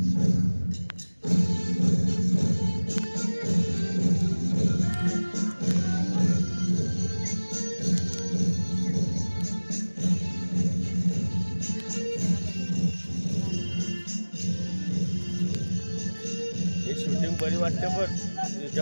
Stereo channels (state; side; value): inverted; both; correlation -1.00